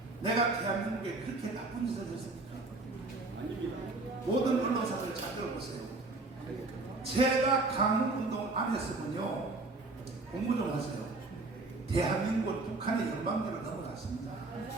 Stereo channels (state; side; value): quieter; left; 3.3 dB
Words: 내가 대한민국에 그렇게 나쁜 짓을 했습니까? 모든 언론사들 잘 들어보세요. 제가 강운동 안 했으면요, 공부 좀 하세요. 대한민국은 북한의 연방제로 넘어갔습니다.